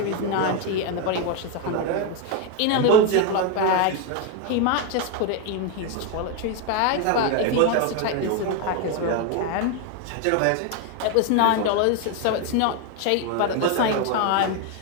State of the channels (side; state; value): both; different; correlation 0.02